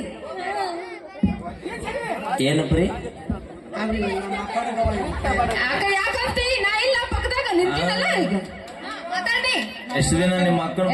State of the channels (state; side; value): identical; both; correlation 1.00